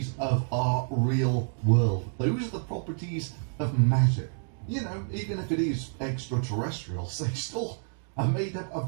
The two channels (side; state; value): left; silent; 59 dB below the other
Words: of our real world. Those are the properties of magic. You know, even if it is extraterrestrials, they still are made up of